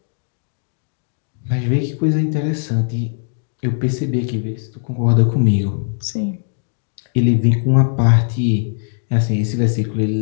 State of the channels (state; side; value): silent; right; digital silence